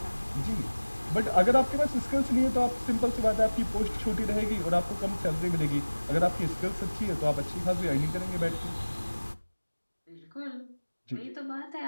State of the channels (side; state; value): both; inverted; correlation -1.00